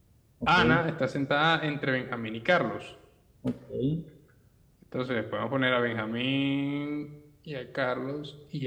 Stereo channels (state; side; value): identical; both; correlation 1.00